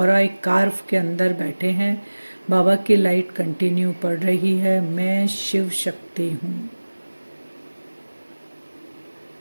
एक कार्व के अंदर बैठे हैं। बाबा की लाइट कंटिन्यू पड़ रही है। मैं शिव शक्ति हूँ।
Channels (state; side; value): inverted; both; correlation -1.00